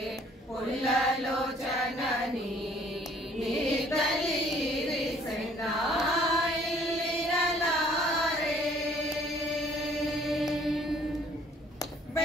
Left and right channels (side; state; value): both; normal; correlation 0.58